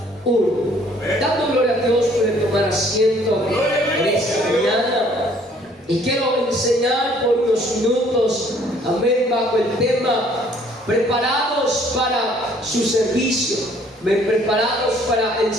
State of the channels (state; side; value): normal; both; correlation 0.60